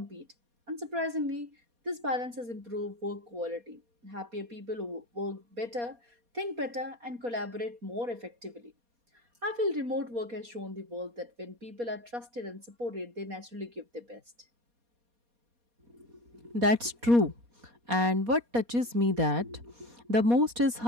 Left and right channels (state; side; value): late; left; 4.2 ms